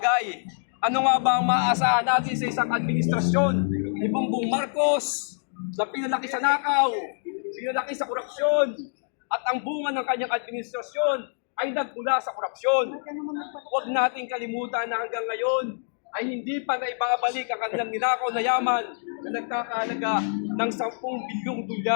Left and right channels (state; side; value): silent; right; digital silence